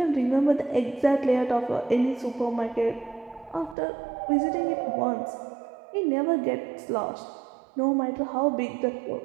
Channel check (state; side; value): drops out; left; at 3.8 s